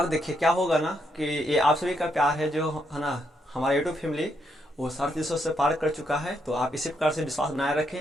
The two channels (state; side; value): normal; both; correlation 0.77